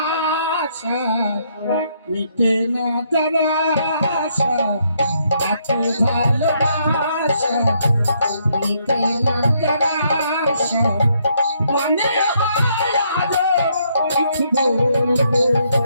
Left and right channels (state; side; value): inverted; both; correlation -0.72